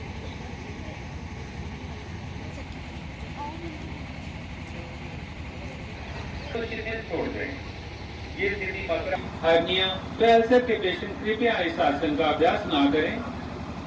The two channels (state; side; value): identical; both; correlation 1.00